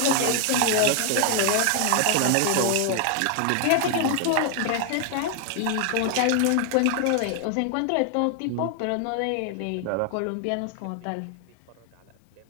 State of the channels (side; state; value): both; different; correlation 0.00